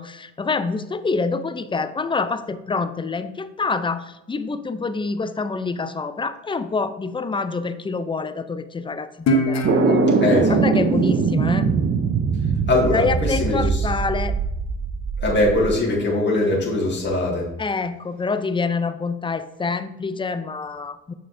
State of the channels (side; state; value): both; normal; correlation 0.42